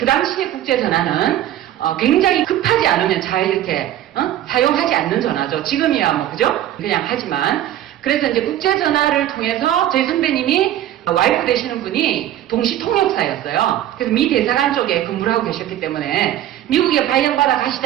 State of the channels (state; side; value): quieter; left; 12.5 dB